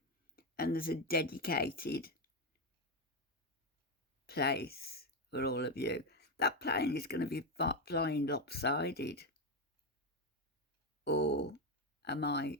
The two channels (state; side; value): normal; both; correlation 0.09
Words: And there's a dedicated place for all of you. That plane is going to be flying lopsided. Or am I